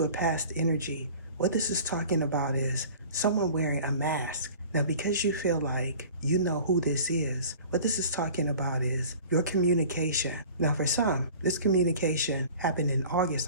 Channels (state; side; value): inverted; both; correlation -0.44